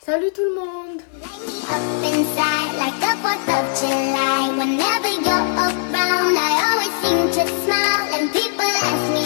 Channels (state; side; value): silent; right; digital silence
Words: Salut tout le monde!